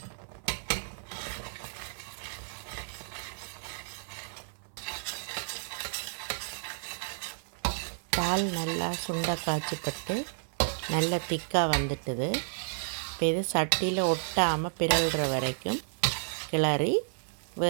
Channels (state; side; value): silent; left; 57 dB below the other